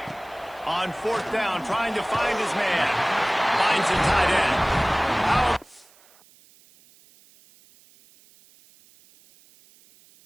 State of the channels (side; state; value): right; noise; hiss, 28 dB below the sound